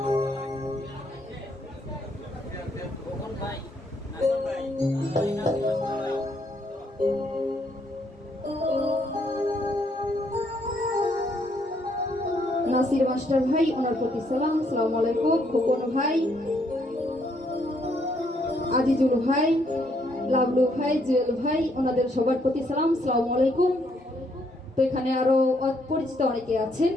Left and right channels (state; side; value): normal; both; correlation 0.71